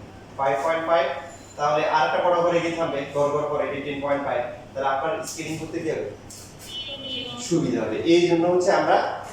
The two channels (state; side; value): identical; both; correlation 1.00